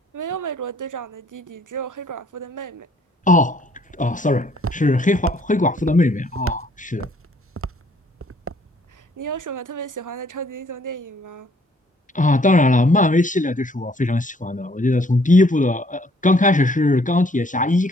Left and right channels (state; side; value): normal; both; correlation 0.63